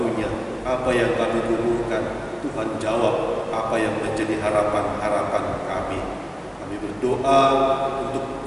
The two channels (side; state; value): both; identical; correlation 1.00